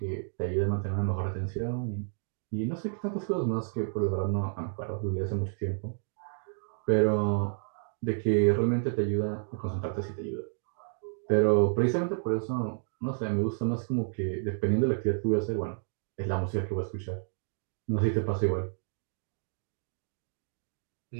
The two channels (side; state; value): left; silent; digital silence